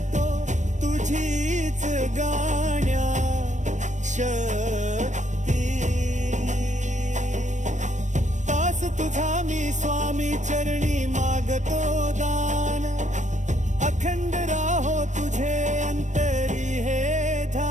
तुझीच गाण्या शक्ती तास तुझा मी स्वामी चरणी मागतो दान अखंड राहो तुझे अंतरी हे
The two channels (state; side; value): late; left; 0.35 ms